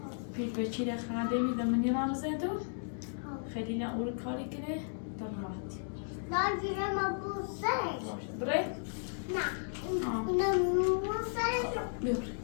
پیش به چیره خنده می دمنی رام زندو خیلی نه اول کاری کنه در راحتی نه جیره ما بوسه بره؟ نه اینا بوسه بره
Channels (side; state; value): right; silent; digital silence